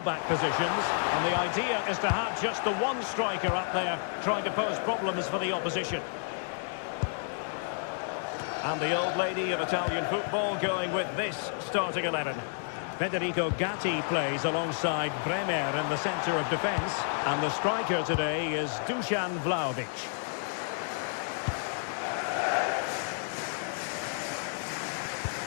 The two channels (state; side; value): silent; right; 57 dB below the other